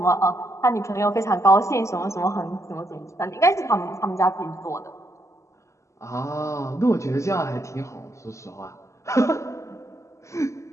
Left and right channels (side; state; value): right; late; 0.14 ms